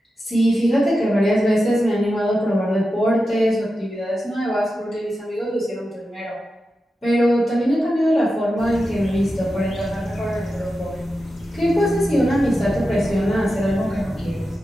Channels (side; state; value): both; normal; correlation 0.91